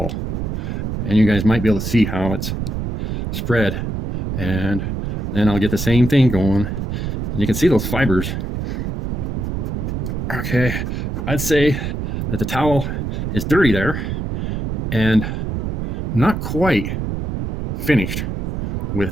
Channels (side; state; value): right; noise; rumble, 2 dB below the sound